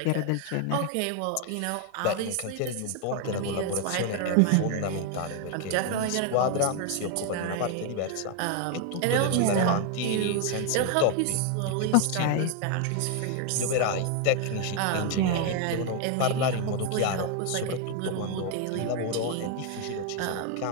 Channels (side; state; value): both; different; correlation 0.00